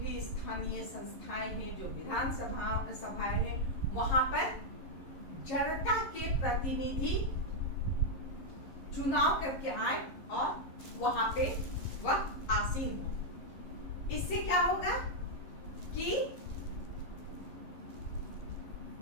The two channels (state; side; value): late; right; 11 ms